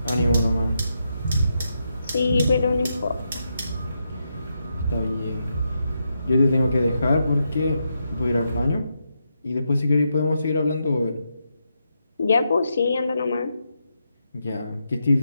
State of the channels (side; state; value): both; inverted; correlation -0.83